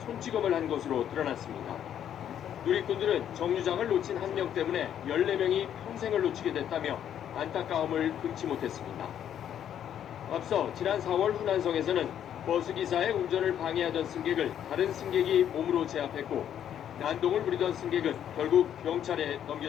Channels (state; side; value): quieter; right; 9.8 dB